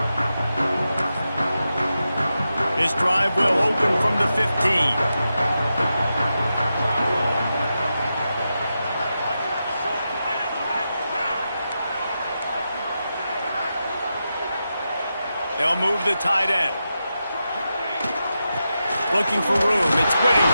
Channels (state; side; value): inverted; both; correlation -0.89